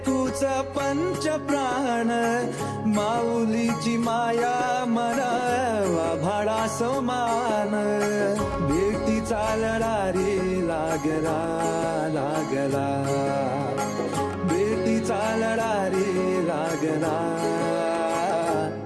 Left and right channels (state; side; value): identical; both; correlation 1.00